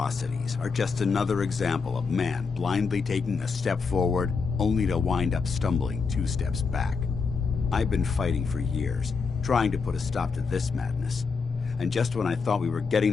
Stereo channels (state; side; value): quieter; right; 5.0 dB